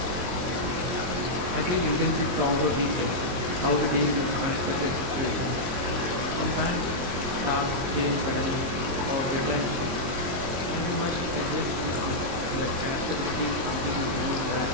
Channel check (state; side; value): late; left; 23 ms